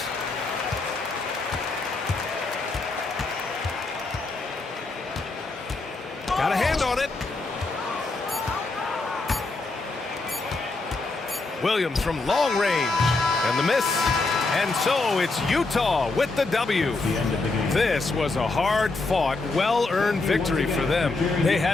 Got a hand on it. Williams from long range. And the miss. And so it's Utah with the W. This was a hard-fought, well-earned victory for them. They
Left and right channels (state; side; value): quieter; right; 3.5 dB